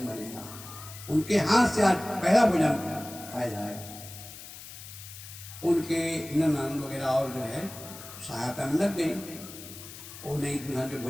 बनेगा, उनके हाथ से आज पहला भोजन खाया जाएगा। उनके ननद वगैरह और जो है सहायता में लग गई। वो नई दुल्हन जो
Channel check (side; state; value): left; noise; hiss, 14 dB below the sound